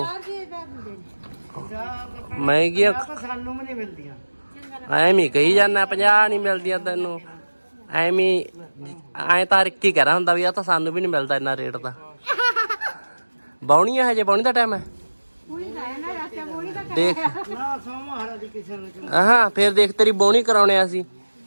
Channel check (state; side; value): inverted; both; correlation -1.00